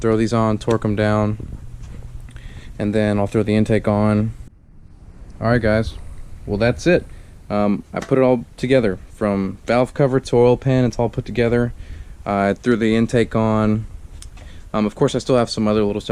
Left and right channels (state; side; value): identical; both; correlation 1.00